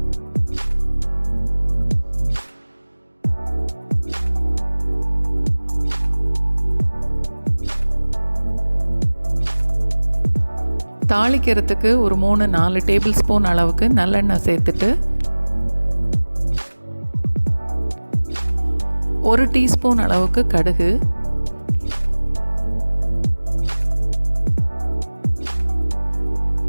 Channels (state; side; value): inverted; both; correlation -1.00